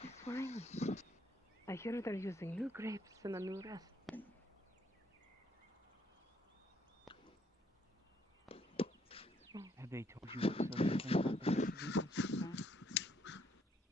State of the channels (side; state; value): both; normal; correlation 0.69